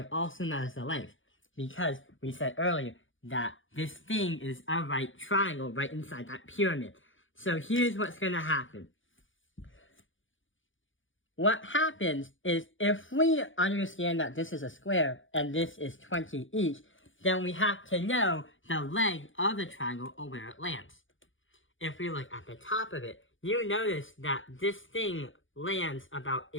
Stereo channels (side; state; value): right; late; 0.57 ms